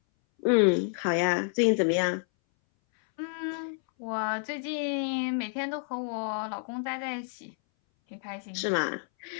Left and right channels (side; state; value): right; silent; 58 dB below the other